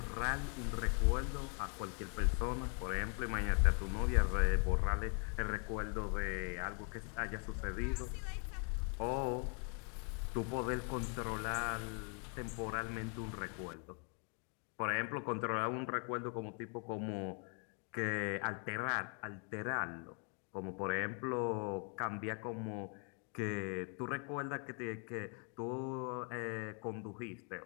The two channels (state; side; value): quieter; right; 39.5 dB